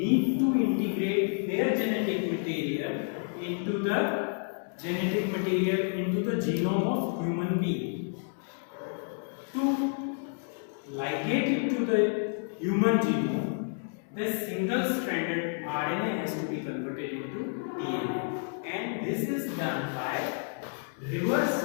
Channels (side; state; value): right; silent; 58 dB below the other